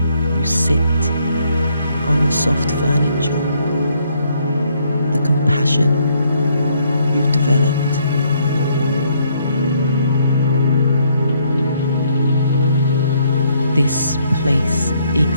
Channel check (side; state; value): both; inverted; correlation -0.69